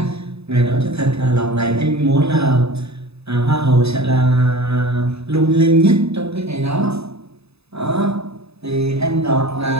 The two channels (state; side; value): late; left; 0.79 ms